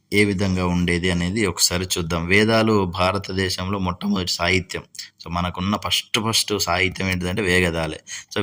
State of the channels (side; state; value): both; identical; correlation 1.00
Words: ఏ విధంగా ఉండేది అనేది ఒకసారి చూద్దాం. వేదాలు భారతదేశంలో మొట్టమొదటి సాహిత్యం. సో మనకున్న ఫస్ట్ సాహిత్యం ఏంటిదంటే వేదాలే. సో